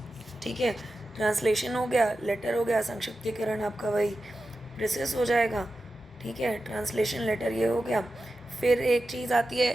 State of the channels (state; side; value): normal; both; correlation 0.92